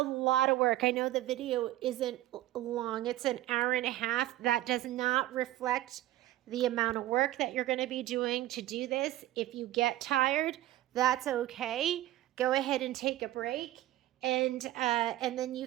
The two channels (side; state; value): left; quieter; 15.3 dB